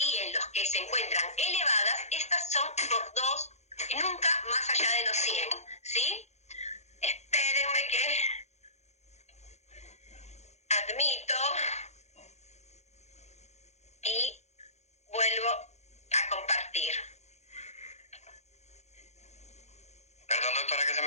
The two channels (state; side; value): late; right; 0.32 ms